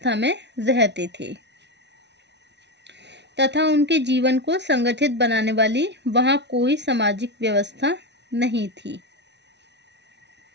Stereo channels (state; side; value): late; left; 0.50 ms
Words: में रहते थे तथा उनके जीवन को संगठित बनाने वाली वहां कोई सामाजिक व्यवस्था नहीं थी।